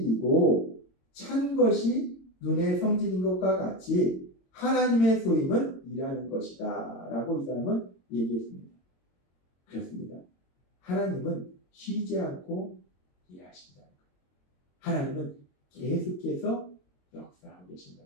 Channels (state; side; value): late; right; 22 ms